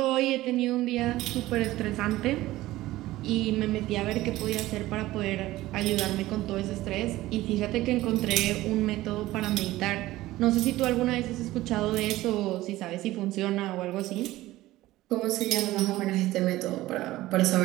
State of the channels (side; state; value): left; quieter; 16.8 dB